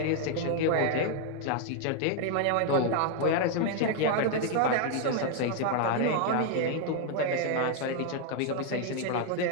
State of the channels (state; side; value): different; both; correlation 0.00